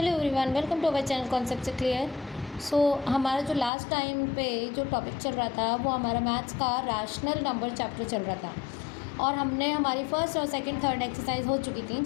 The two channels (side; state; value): right; drops out; at 3.7 s